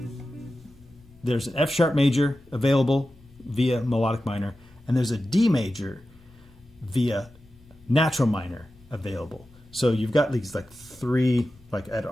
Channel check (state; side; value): normal; both; correlation 0.93